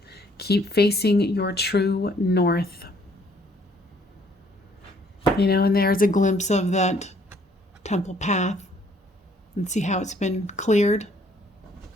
Keep facing your true north. And there's a glimpse of that temple path. And see how it's been cleared.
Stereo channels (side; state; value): both; normal; correlation 0.63